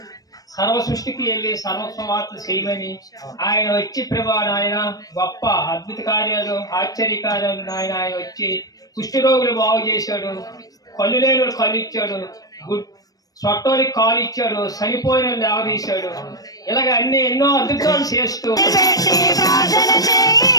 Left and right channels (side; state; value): right; late; 0.18 ms